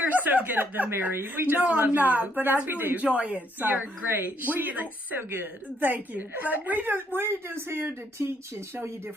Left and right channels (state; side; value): normal; both; correlation 0.70